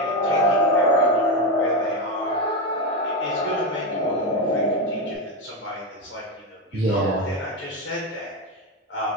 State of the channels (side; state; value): both; normal; correlation 0.12